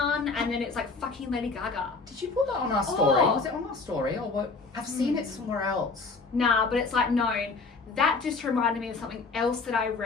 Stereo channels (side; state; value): right; quieter; 4.1 dB